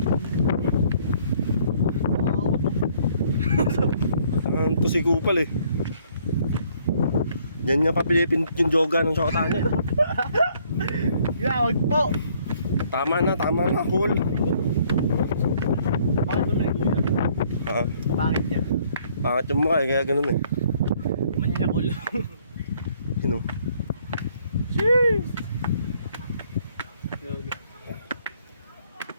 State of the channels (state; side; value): inverted; both; correlation -0.63